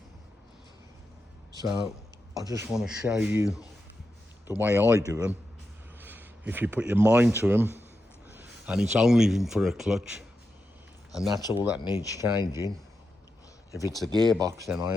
So I just want to show you the way I do them. If you put your mind to them, and it's only for a clutch, and that's all that needs changing. If it's a gearbox, then I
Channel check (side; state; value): both; normal; correlation 0.88